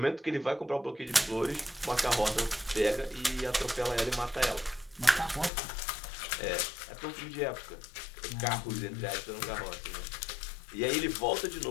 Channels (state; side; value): drops out; right; at 5.5 s